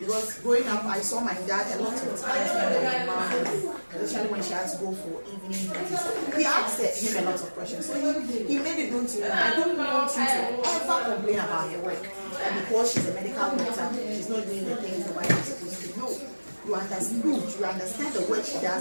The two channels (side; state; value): both; inverted; correlation -1.00